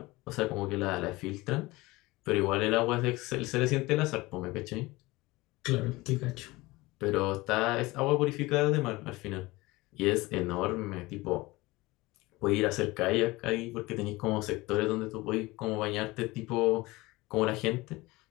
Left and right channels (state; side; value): quieter; right; 21.1 dB